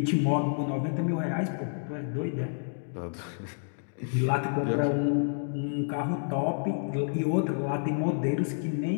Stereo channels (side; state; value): right; silent; digital silence